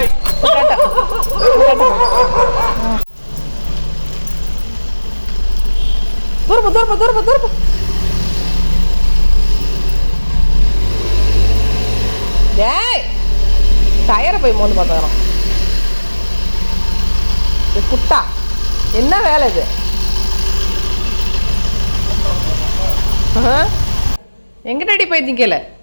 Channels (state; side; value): inverted; both; correlation -1.00